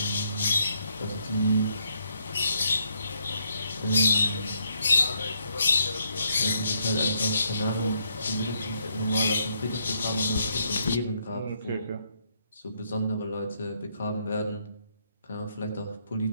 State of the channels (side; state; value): both; inverted; correlation -0.75